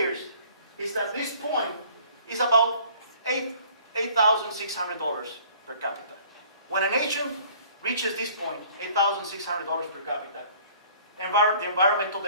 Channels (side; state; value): both; inverted; correlation -0.53